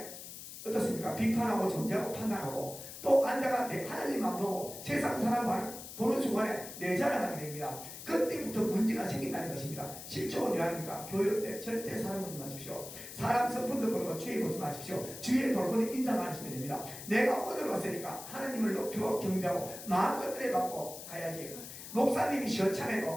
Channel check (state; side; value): noise; left; hiss, 11 dB below the sound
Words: 어떻습니까? 비판하고 정죄하고 판단하고 또 앉아가 하나님 안 보고 세상 사람 보는 순간에 내 자랑하게 됩니다. 그때부터 문제가 생긴다는 것입니다. 실종은 왜 합니까? 교회 때 절대 사람 보지 마십시오. 사람 성품도 보고 주의 보지 마십시오. 주의 볼거는 인사만 하시면 됩니다. 내가 오늘 왔으니까 하나님을 높이고 경배하고 마음껏 은혜받고 가야지. 목사님이